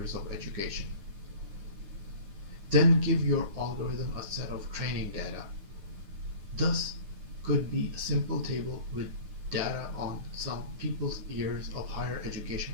of education. Then give your algorithm a set of training data. Thus could be a simple table with data on some people's years of higher education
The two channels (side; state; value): left; late; 10 ms